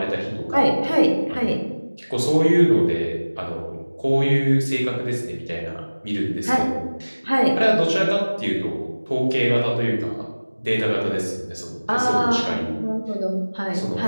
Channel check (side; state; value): both; inverted; correlation -1.00